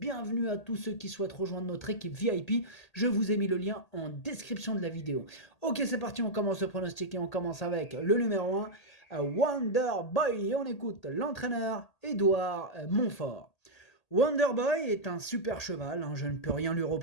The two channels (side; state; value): right; late; 1.8 ms